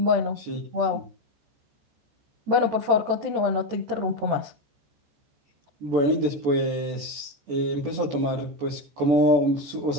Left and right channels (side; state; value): left; late; 14 ms